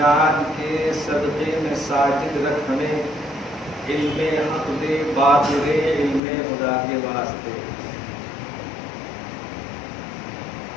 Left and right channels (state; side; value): drops out; right; at 6.2 s